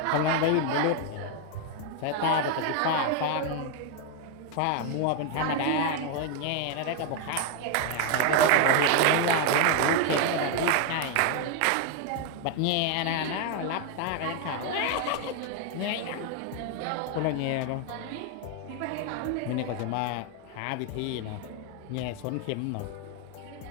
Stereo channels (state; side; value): different; both; correlation 0.01